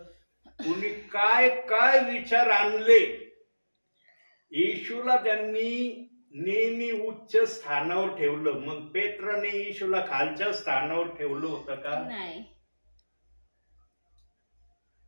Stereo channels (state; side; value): inverted; both; correlation -1.00